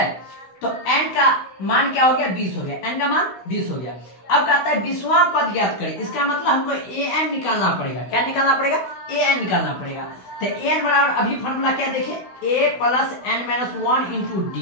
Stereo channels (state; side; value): late; right; 16 ms